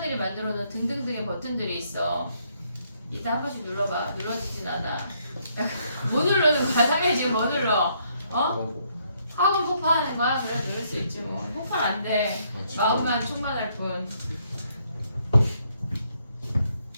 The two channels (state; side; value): inverted; both; correlation -0.71